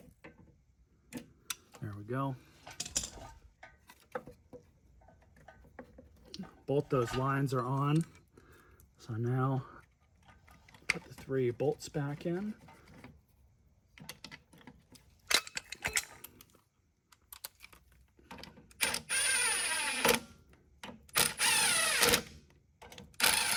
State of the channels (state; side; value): identical; both; correlation 1.00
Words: There we go. Both those lines are on. So now put the 3 bolts back in.